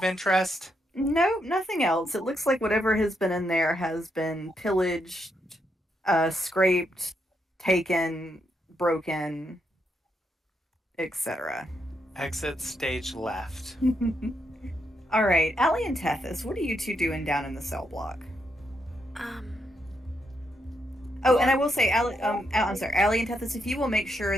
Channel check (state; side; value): normal; both; correlation 0.79